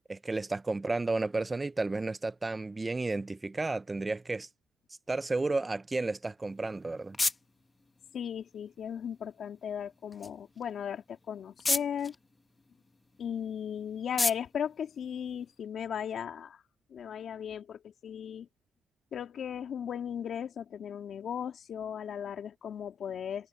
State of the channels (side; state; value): both; normal; correlation 0.87